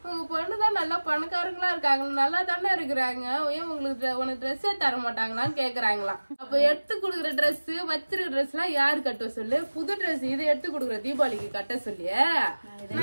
பொண்ணுதான் நல்லா பணக்காரங்களா இருக்காங்க, நல்லா தானே இருக்கிறாங்க, ஏன் உனக்கு ட்ரெஸ்ஸே தர மாட்டாங்களான்னு கேக்குறாங்களாம். அப்ப எடுத்து கொடுக்குற ட்ரெஸ் வச்சிருக்க ட்ரெஸ் எல்லாம் யாரு கட்ட சொல்லு? புது ட்ரெஸ் இது எடுத்து கொடுக்குற தீபாவளிக்கு கட்ட சொல்லி.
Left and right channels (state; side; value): inverted; both; correlation -1.00